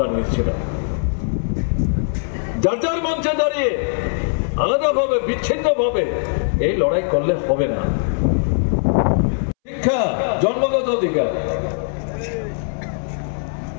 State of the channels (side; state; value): right; silent; 65 dB below the other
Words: জানিয়েছিলাম, যার যার মঞ্চে দাঁড়িয়ে আলাদাভাবে, বিচ্ছিন্নভাবে এই লড়াই করলে হবে না। শিক্ষা জন্মগত অধিকার,